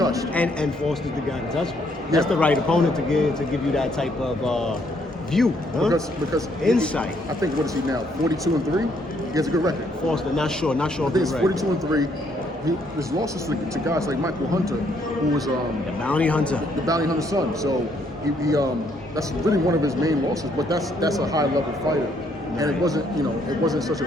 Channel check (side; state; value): both; normal; correlation 0.70